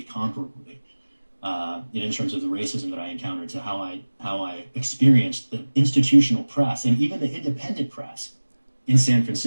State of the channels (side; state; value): both; inverted; correlation -1.00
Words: comparably, in terms of the racism that I encountered, to how I experienced the institutional press and even the independent press in San